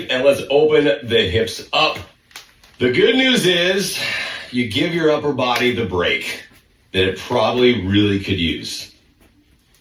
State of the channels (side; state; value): both; identical; correlation 1.00